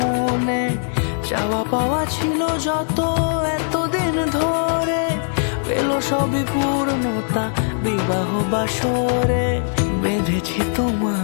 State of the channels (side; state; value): right; silent; digital silence